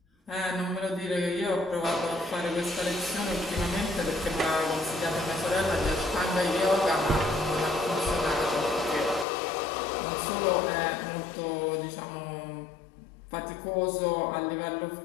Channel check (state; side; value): drops out; right; at 9.2 s